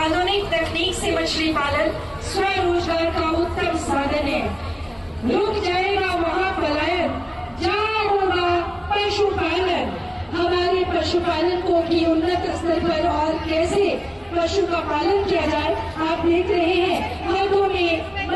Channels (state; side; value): identical; both; correlation 1.00